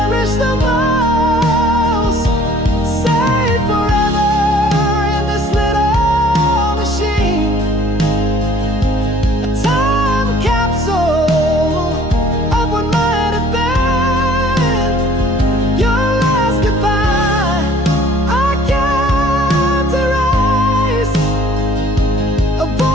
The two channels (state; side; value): normal; both; correlation 0.54